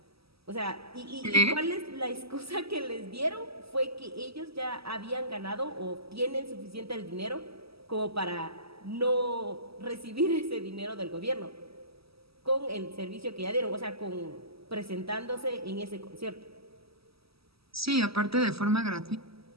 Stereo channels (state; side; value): late; left; 0.76 ms